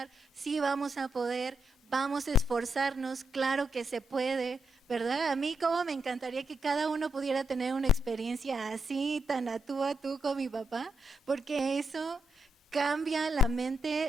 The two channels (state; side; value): normal; both; correlation 0.82